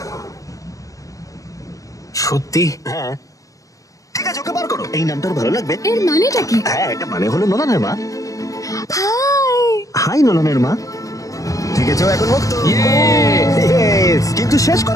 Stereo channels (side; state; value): right; late; 0.16 ms